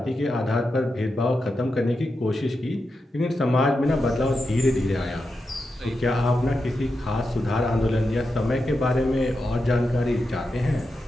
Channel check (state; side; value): normal; both; correlation 0.88